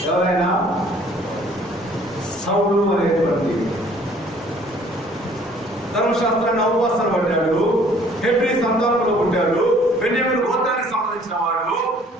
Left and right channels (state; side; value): normal; both; correlation 0.57